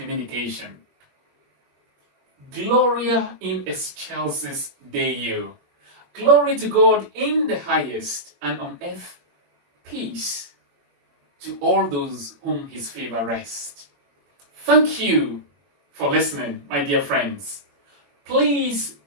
Gloria in excelsis Deo. Glory to God in the highest, and on earth peace to all those whom his favor rests. Thank you for listening, my dear friends. Please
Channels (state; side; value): late; left; 21 ms